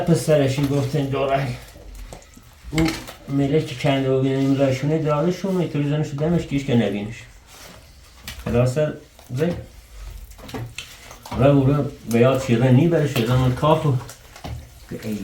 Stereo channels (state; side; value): identical; both; correlation 1.00